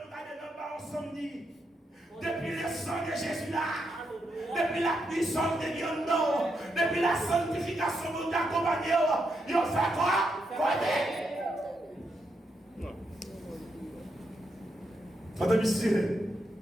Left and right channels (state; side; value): normal; both; correlation 0.82